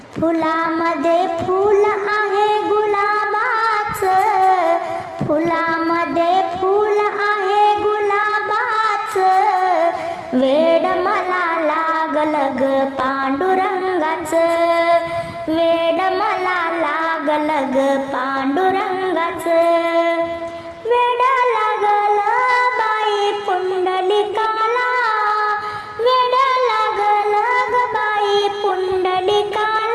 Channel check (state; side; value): identical; both; correlation 1.00